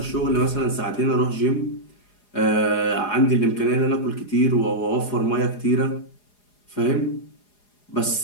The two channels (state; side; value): late; right; 4.9 ms